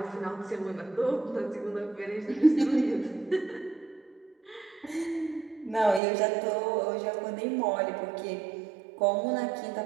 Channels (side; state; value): left; drops out; at 6.0 s